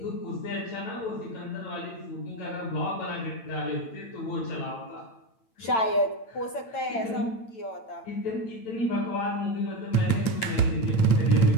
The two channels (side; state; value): right; late; 8.9 ms